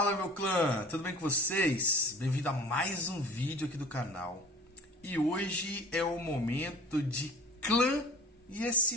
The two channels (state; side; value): normal; both; correlation 0.44